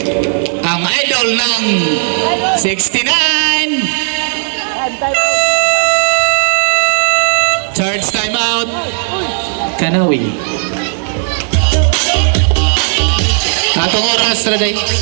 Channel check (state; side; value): silent; left; digital silence